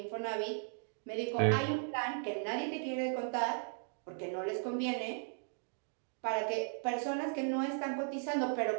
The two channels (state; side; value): silent; left; 53 dB below the other